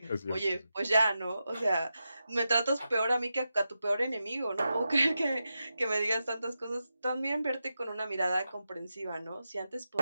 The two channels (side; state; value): both; inverted; correlation -0.90